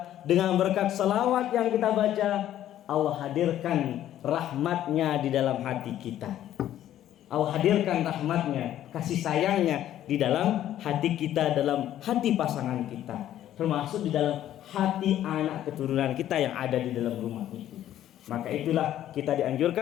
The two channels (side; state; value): right; quieter; 12.0 dB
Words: dengan berkat salawat yang kita baca, Allah hadirkan rahmatnya di dalam hati kita. Allah hadirkan rahmatnya, kasih sayangnya di dalam hati kita, dalam hati pasangan kita, termasuk di dalam hati anak keturunan kita yang ada di dalam rumah itu. Maka itulah kita